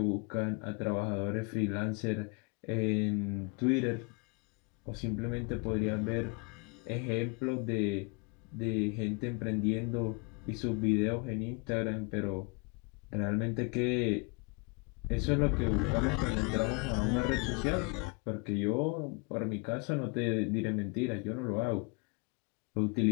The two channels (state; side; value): quieter; right; 31.2 dB